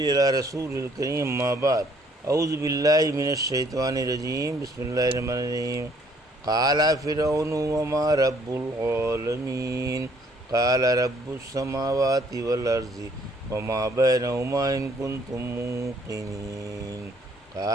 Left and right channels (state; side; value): normal; both; correlation 0.63